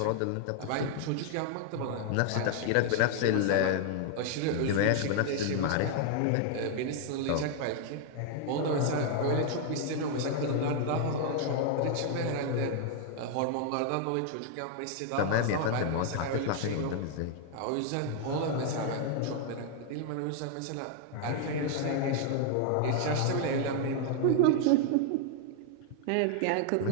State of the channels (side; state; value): both; different; correlation 0.00